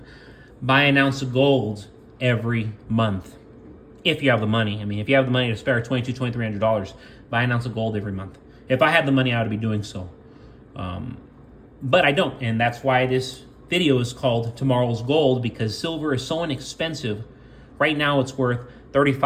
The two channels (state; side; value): identical; both; correlation 1.00